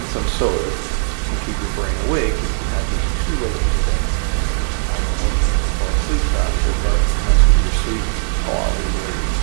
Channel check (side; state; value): left; silent; 67 dB below the other